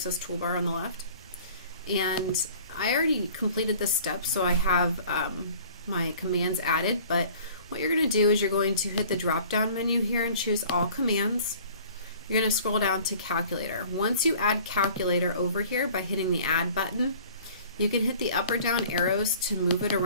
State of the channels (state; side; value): inverted; both; correlation -0.49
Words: Toolbar on the left. And I already completed this step, so I have my commands added, but what you're going to do is you're going to hit the drop-down menu here and choose All Commands. You're going to scroll down to Calculator. Once you add Calculator over here by hitting the Add button, you can hit the up or down arrows to move it